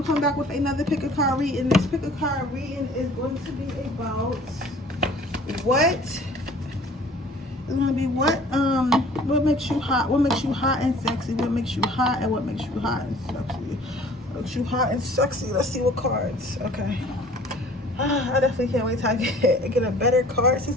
coming back with another pick a card reading. This pick a card reading is going to be about what what makes you hot, what makes you hot and sexy, what makes you hot and what makes you hot and sexy. What makes you hot and sexy. Let's see what cards. Okay. I definitely can't wait till I get a better card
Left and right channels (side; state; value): both; normal; correlation 0.50